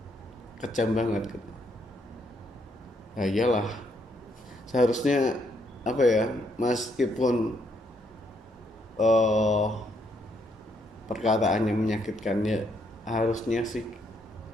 kejam banget gitu. Ya iyalah, seharusnya apa ya, meskipun eh perkataannya menyakitkan, ya harusnya sih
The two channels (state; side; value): normal; both; correlation 0.73